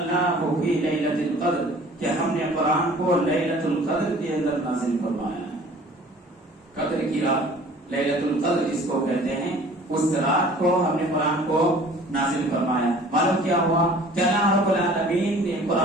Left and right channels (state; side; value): normal; both; correlation 0.49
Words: فی لیلۃ القدر، کہ ہم نے قرآن کو لیلۃ القدر کے اندر نازل فرمایا ہے. قدر کی رات لیلۃ القدر جس کو کہتے ہیں، اس رات کو ہم نے قرآن کو نازل فرمایا. معلوم کیا ہوا کہ اللہ رب العالمین نے